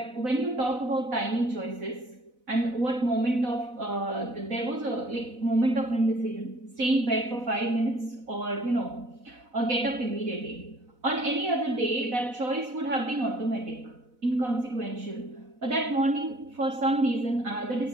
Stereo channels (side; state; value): left; late; 4.0 ms